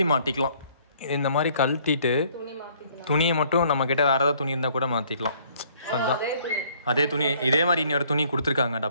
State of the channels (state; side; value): inverted; both; correlation -0.61